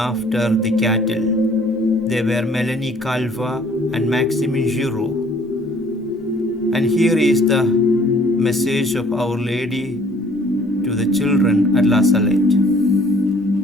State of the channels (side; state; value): both; normal; correlation 0.57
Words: the cattle. They were Melanie Calvat and Maximin Giraud. And here is the message of Our Lady to the children at La Salette.